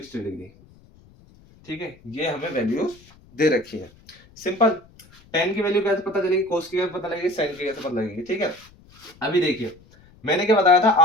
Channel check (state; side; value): noise; left; rumble, 27 dB below the sound